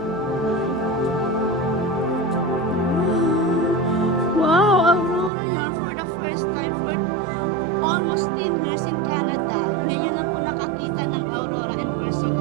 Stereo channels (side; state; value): left; drops out; at 5.3 s